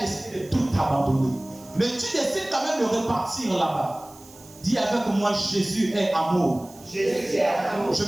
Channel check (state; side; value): noise; right; hiss, 23 dB below the sound